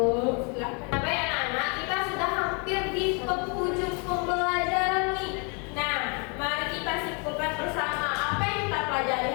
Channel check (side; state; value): right; quieter; 34.6 dB